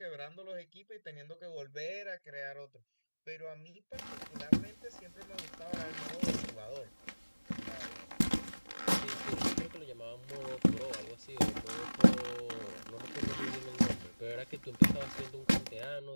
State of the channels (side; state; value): both; inverted; correlation -1.00